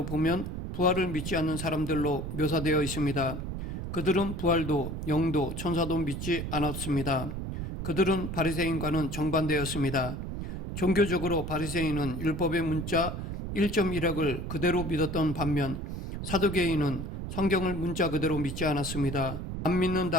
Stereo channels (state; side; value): noise; right; rumble, 5 dB below the sound